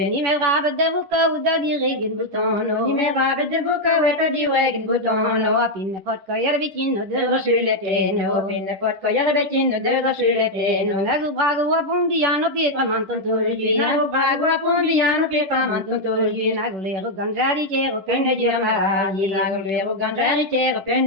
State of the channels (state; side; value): late; left; 10 ms